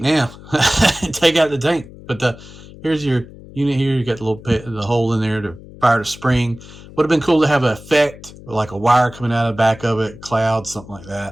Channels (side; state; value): left; noise; hum, 18 dB below the sound